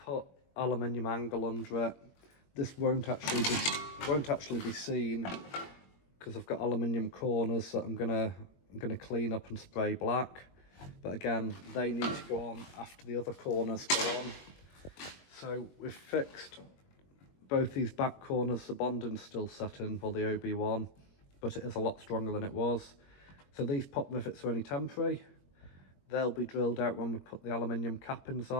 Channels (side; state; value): right; late; 21 ms